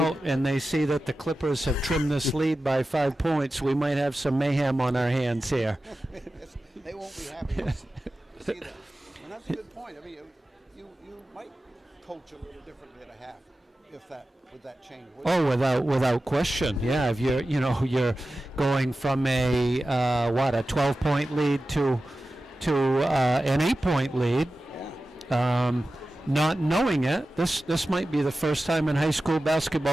and they see that the Clippers have trimmed this lead by 5 points, we might have some mayhem on our hands here. They won't be happy to see that. And that's a good point. I mean, you might coach a little differently at a half with that change. Oh, without question. Yeah, if you're going from a 12-point lead to an 8-point lead. Not knowing it, this might be the first time in high school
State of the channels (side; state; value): both; normal; correlation 0.94